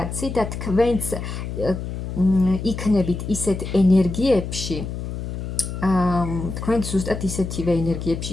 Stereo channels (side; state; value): left; noise; hum, 6 dB below the sound